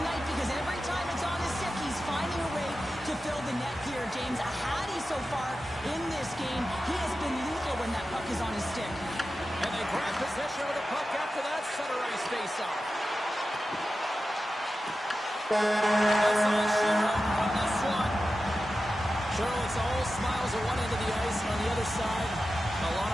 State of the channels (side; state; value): both; normal; correlation 0.93